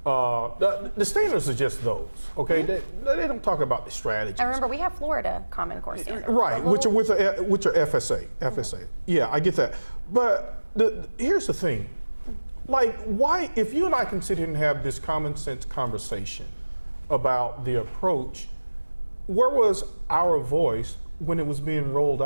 the standards are just those, okay? They don't talk about the strategies. And remember, we have Florida Common Core standards. Right, which are FSA. Yeah, I get that. But here's the thing. Like, why, if you and I can sit here and have this common sense conversation about the approach, where was our voice when it was being rolled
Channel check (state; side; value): inverted; both; correlation -1.00